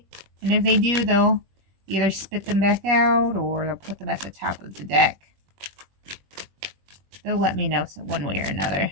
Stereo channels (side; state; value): left; late; 21 ms